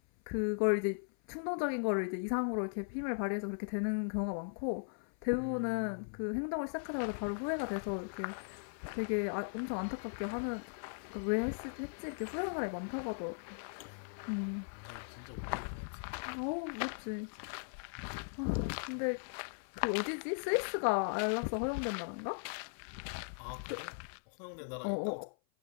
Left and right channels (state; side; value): silent; right; 52 dB below the other